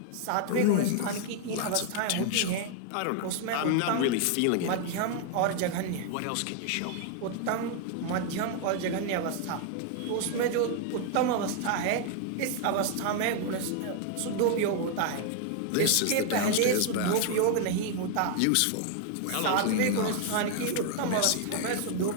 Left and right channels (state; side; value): different; both; correlation 0.00